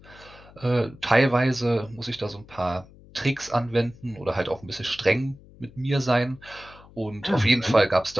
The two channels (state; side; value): noise; left; hum, 23 dB below the sound